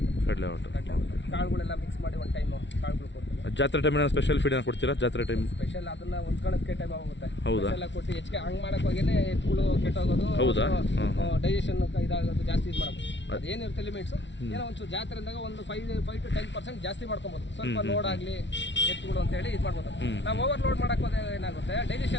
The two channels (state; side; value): late; right; 0.53 ms